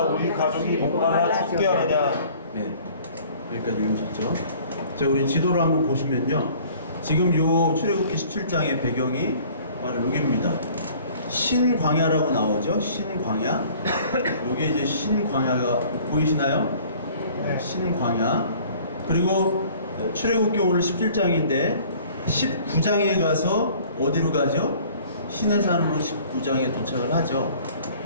우리 가족이 목마라 죽게 하느냐. 네, 여기까지 읽으셨죠? 자, 우리 지도를 한번 보시면요, 지금 요 출애굽기 17장의 배경이 바로 여기입니다. 신광야라고 나오죠? 신광야. 여기 이제 신광야가 보이시나요? 네, 신광야. 그리고 출애굽기 오늘 17장인데 19장에 가서 어디로 가죠? 시내산으로 19장에 도착을 하죠.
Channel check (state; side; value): inverted; both; correlation -0.52